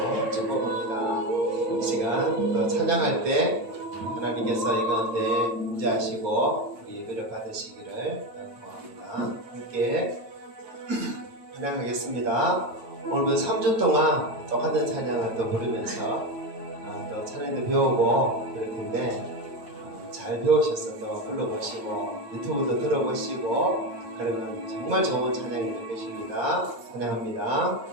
축복합니다. 이 시간 또 찬양할 때 하나님께서 이 가운데 임재하시고 예배를 받으시기를 바랍니다. 함께 찬양하겠습니다. 오늘도 3주 동안 똑같은 찬양을 또 부르면서 또 찬양도 배우고 그럴 텐데 잘 배우셔서 또 불러보시고 유튜브도 들어보시고 그러면 정말 좋은 찬양이 될 것입니다. 찬양합니다.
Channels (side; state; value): left; late; 9.3 ms